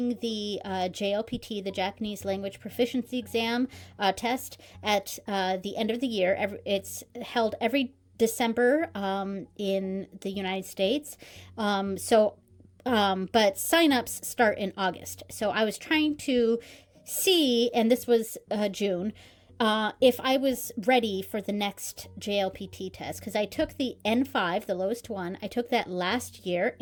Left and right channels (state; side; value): identical; both; correlation 1.00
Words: the JLPT, the Japanese Language Proficiency Exam test at the end of the year. It's held every December in the United States. But signups start in August. So I was trying to see, and this was June, if I was ready for the next JLPT test, because I took the N5, the lowest one. I took that last year